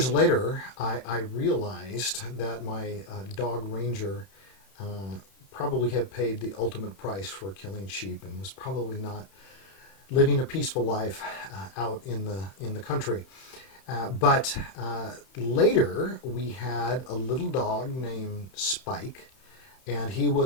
later, I realized that my dog Ranger uh, probably had paid the ultimate price for killing sheep and was probably not living a peaceful life out in the country. But later, we had a little dog named Spike, and he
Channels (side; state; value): right; late; 31 ms